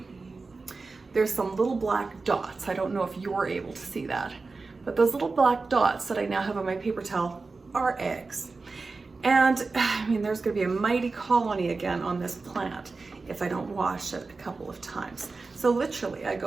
there's some little black dots. I don't know if you're able to see that, but those little black dots that I now have on my paper towel are eggs. And I mean, there's gonna be a mighty colony again on this plant if I don't wash it a couple of times. So literally I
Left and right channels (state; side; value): quieter; left; 4.0 dB